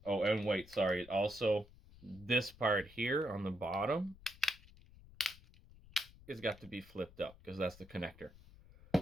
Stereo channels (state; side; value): noise; left; rumble, 22 dB below the sound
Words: Oh, and wait, sorry. Also, this part here on the bottom has got to be flipped up because that's the connector.